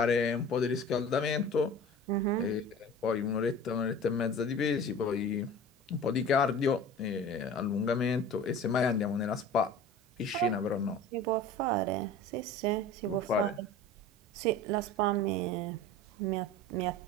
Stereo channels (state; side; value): normal; both; correlation 0.39